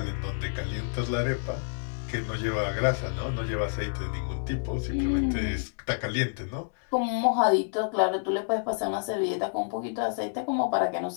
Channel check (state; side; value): silent; right; digital silence